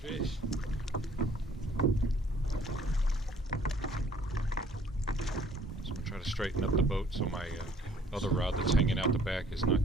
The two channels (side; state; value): both; normal; correlation 0.58